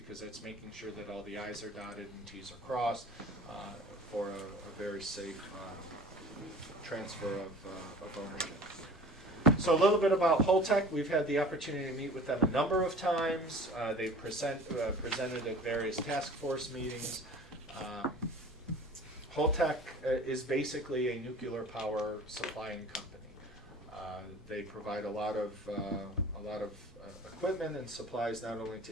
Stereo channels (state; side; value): normal; both; correlation 0.43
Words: it's making sure that all the I's are dotted and T's are crossed for a very safe transfer of ownership. So a little bit about Holtec. We've had the opportunity to meet with them a number of times. They've presented at various task force meetings. Holtec is basically a nuclear power supplying company. They provide a lot of equipment and supplies not only